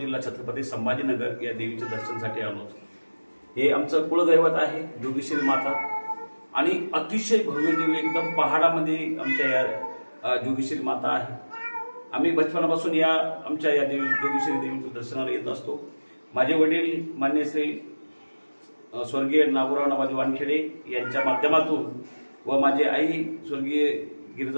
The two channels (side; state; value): both; inverted; correlation -1.00